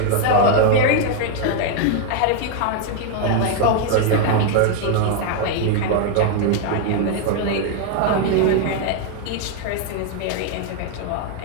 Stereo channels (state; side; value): different; both; correlation 0.01